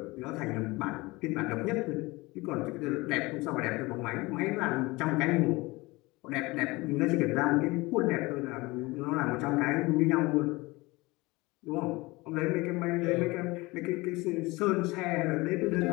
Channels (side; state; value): right; quieter; 22.5 dB